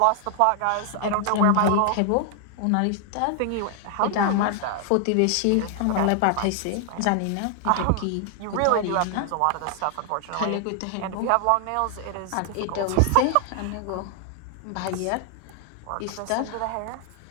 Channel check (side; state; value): both; different; correlation 0.00